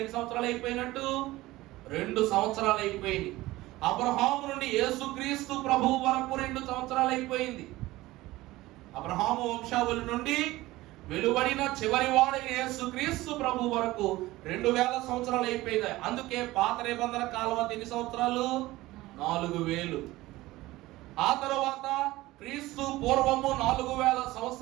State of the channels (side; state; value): left; quieter; 18.2 dB